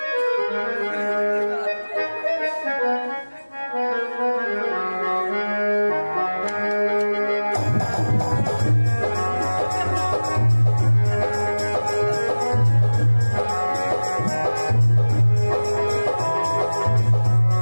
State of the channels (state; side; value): inverted; both; correlation -1.00